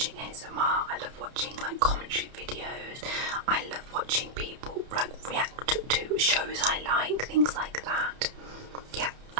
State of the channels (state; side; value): late; left; 31 ms